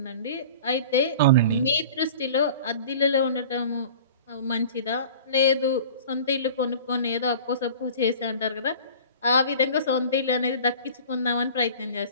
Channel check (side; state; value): both; inverted; correlation -0.42